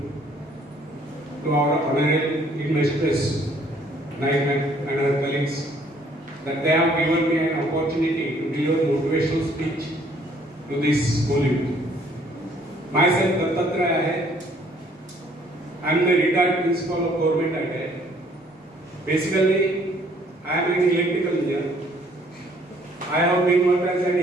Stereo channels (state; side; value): normal; both; correlation 0.62